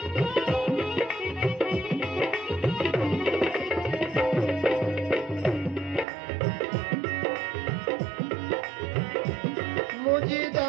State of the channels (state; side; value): drops out; left; at 6.1 s